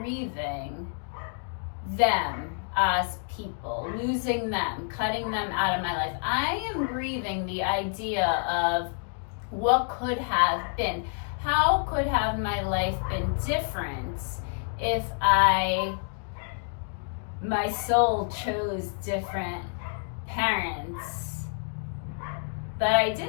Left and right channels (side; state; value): right; silent; 57 dB below the other